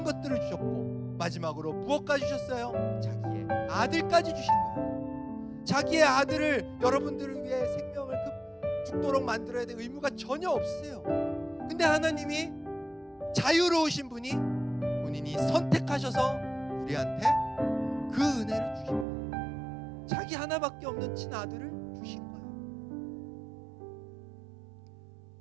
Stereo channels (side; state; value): left; drops out; at 19.1 s